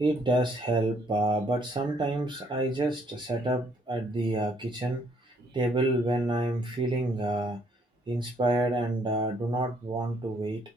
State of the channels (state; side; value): normal; both; correlation 0.67